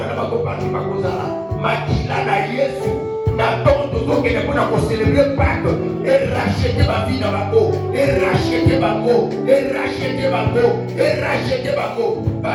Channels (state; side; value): identical; both; correlation 1.00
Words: na bango parti bakozala, makila na Yesu. N'attends toujours qu'il est pour célébrer Pâques et racheter ma vie dans ma peau, et racheter ma peau, et racheter ma peau, et racheter ma peau.